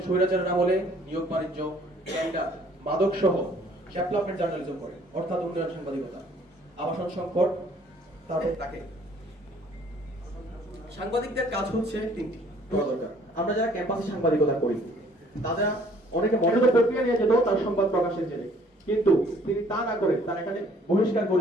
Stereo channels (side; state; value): both; normal; correlation 0.58